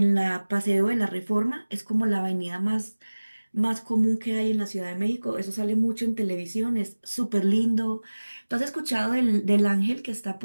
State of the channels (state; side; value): inverted; both; correlation -1.00